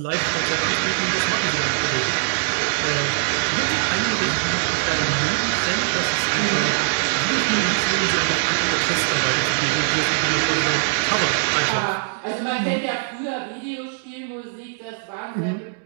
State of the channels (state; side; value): silent; left; digital silence